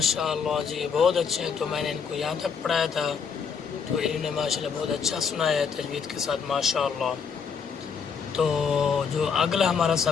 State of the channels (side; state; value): right; quieter; 6.2 dB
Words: जी, बहुत अच्छे हैं। तो मैंने इनको यहाँ तक पढ़ाया था, तो इन्होंने माशाल्लाह बहुत अच्छा सुनाया है तजवीद के साथ, माशाल्लाह। तो जो अगला हमारा